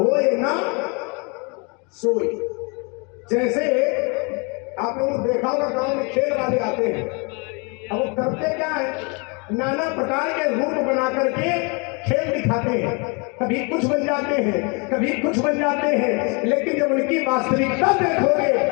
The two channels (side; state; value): right; quieter; 32.3 dB